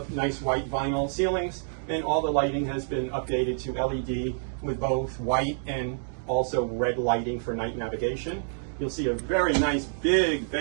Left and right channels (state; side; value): silent; left; digital silence